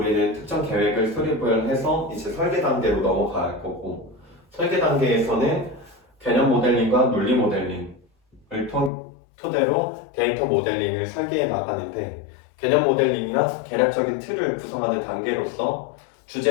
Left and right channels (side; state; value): right; drops out; at 8.9 s